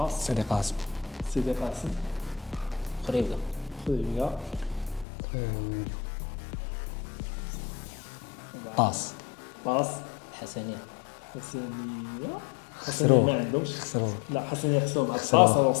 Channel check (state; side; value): drops out; right; at 5.1 s